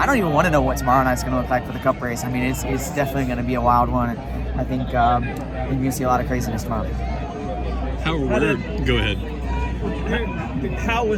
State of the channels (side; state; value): both; identical; correlation 1.00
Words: don't even want to know what tomorrow night's going to look like for the Cup race. I mean, it's definitely going to be a wild one. And I think you're going to see a lot of craziness tomorrow. Go ahead. How